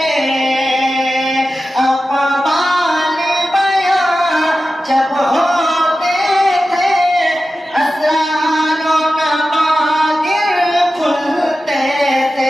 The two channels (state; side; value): normal; both; correlation 0.93